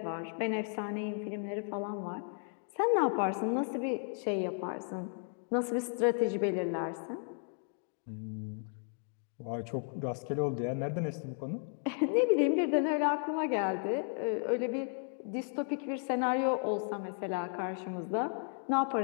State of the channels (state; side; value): silent; right; 55 dB below the other